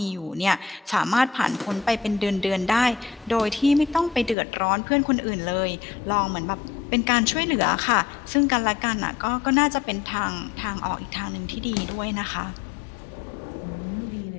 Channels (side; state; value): right; drops out; at 4.4 s